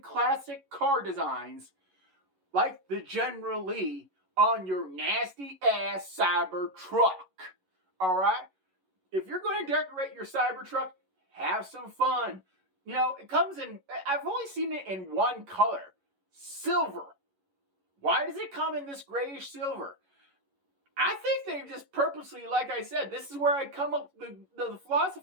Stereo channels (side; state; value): left; late; 11 ms